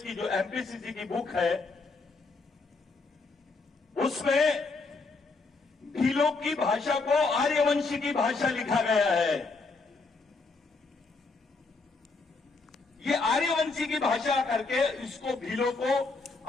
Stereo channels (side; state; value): right; quieter; 3.9 dB